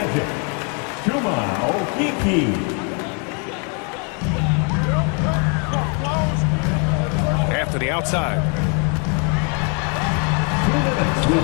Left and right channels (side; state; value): right; quieter; 35.7 dB